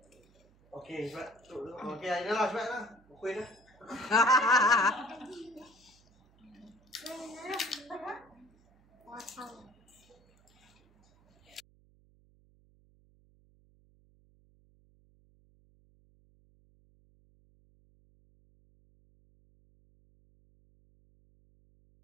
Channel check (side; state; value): right; noise; hum, 30 dB below the sound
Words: Okey, sebab okey, ini lah sebab lah. Kuih dah.